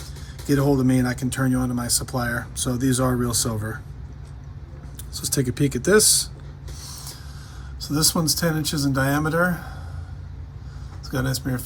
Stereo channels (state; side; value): identical; both; correlation 1.00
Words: Get a hold of me and I can turn you on to my supplier. So these are real silver. So let's take a peek at this. So this one's 10 inches in diameter. It's got an S mirror